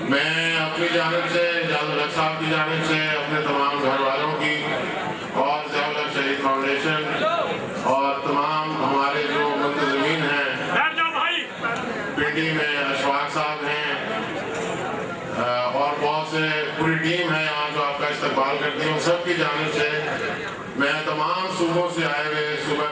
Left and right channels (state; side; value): identical; both; correlation 1.00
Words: میں اپنی جانب سے ضیاء الحق صاحب کی جانب سے اپنے تمام گھر والوں کی اور ضیاء الحق شہید فاؤنڈیشن اور تمام ہمارے جو منتظمین ہیں پنڈی میں اشفاق صاحب ہیں اور بہت سے پوری ٹیم ہے یہاں جو آپ کا استقبال کرتی ہوں, سب کی جانب سے میں تمام صوبوں سے آئے ہوئے, صوبہ